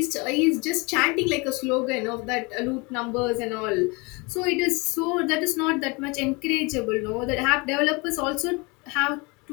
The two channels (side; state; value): right; quieter; 27.7 dB